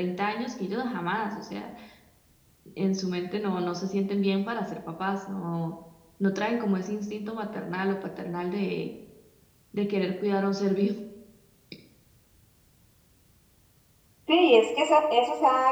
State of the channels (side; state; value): both; identical; correlation 1.00